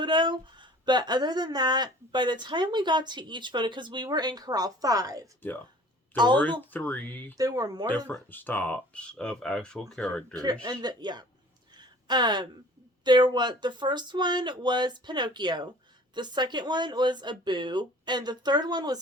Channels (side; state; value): both; normal; correlation 0.48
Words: But other than that, by the time we got to each photo, because we were in Corral 5. Yeah. There were 3 there were more different stops of actual characters. And the first one was Pinocchio. The second one was Abu. And the third one